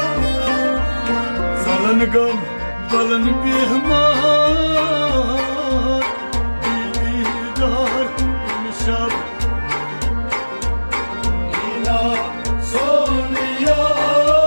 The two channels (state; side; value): inverted; both; correlation -1.00